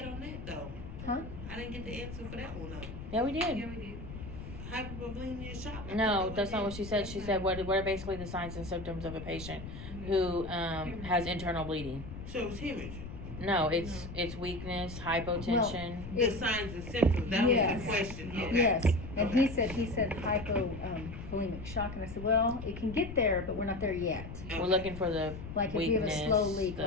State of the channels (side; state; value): left; noise; rumble, 10 dB below the sound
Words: at on that though? Huh? I didn't get the answer for that one though. Yeah, we Yeah, did. we did. Hypovolemic shock. No, that's not what she said. She said, what are basically the signs and symptoms of a patient who has internal bleeding? So it was hemorrhage. No, it's weakness, hypotension. The signs and symptoms, that Yes. was the question. Okay. Yes, and Okay. he said hypovolemic shock, and I said, well, it can get there, but we're not there yet. We're looking for the Like if you have a slow weakness, leak,